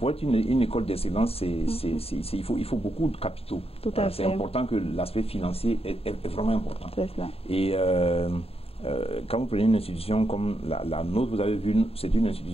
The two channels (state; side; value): late; right; 0.28 ms